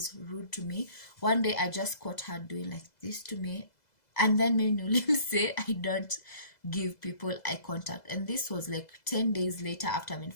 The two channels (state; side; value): late; right; 2.0 ms